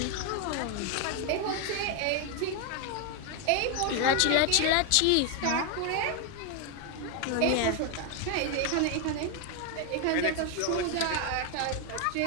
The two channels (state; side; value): different; both; correlation 0.01